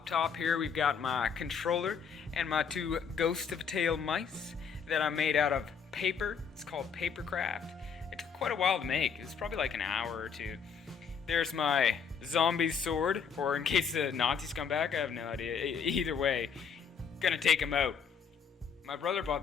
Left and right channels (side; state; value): right; quieter; 6.5 dB